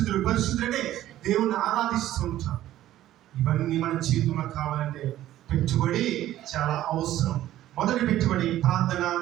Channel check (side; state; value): left; quieter; 13.6 dB